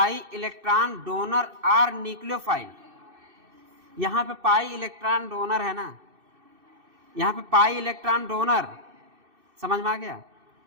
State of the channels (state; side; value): late; left; 2.6 ms